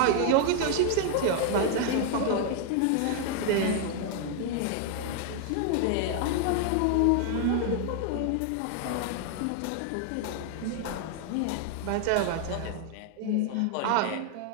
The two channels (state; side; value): different; both; correlation 0.00